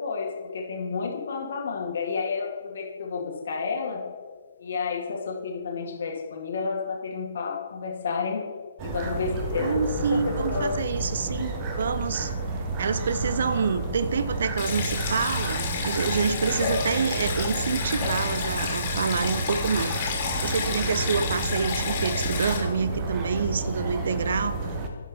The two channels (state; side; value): inverted; both; correlation -0.67